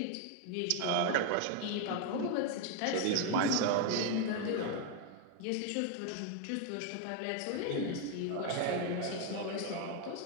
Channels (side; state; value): both; different; correlation 0.01